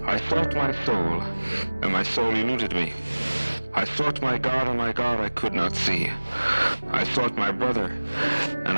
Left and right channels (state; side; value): inverted; both; correlation -1.00